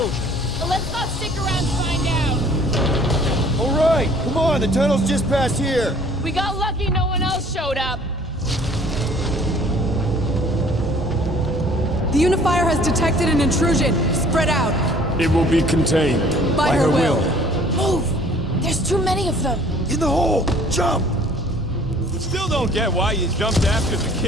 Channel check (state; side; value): normal; both; correlation 0.54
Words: Let's not stick around to find out. All right, come on, the tunnel's just past here. We got lucky no one else showed up. The Unifier has detected an intrusion. Spread out. It will be contained. By her will. Move! There's too many of them. In the hole, jump! Still don't get why you jumped after the